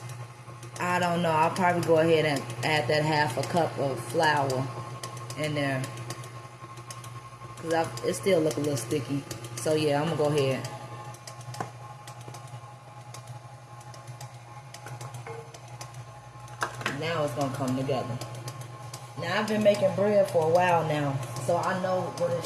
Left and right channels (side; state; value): both; identical; correlation 1.00